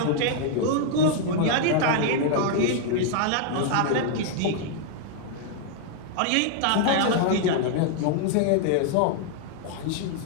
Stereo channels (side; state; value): both; different; correlation 0.00